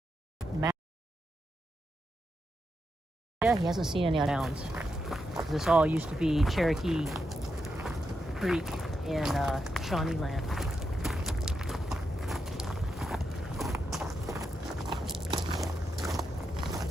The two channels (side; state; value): both; normal; correlation 0.85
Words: Yeah, he hasn't seen any towns. This all used to be Cherokee Creek in Shawnee land.